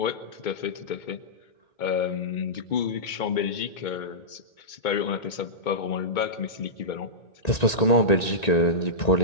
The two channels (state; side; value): late; right; 1.9 ms